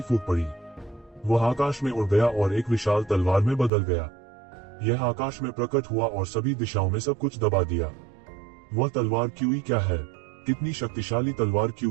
फूट पड़ी। वह आकाश में उड़ गया और एक विशाल तलवार में बदल गया। यह आकाश में प्रकट हुआ और सभी दिशाओं में सब कुछ दबा दिया। वह तलवार क्यूई क्या है? कितनी शक्तिशाली तलवार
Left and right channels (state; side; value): drops out; left; at 3.7 s